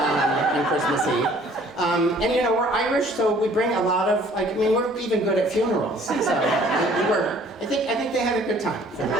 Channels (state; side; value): normal; both; correlation 0.56